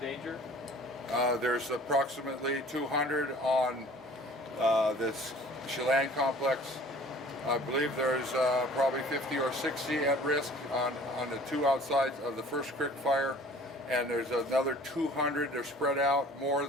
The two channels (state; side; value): normal; both; correlation 0.49